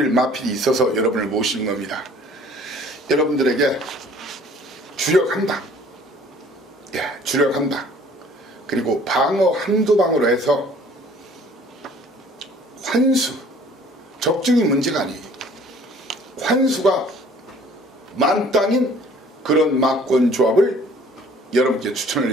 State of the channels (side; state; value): both; normal; correlation 0.53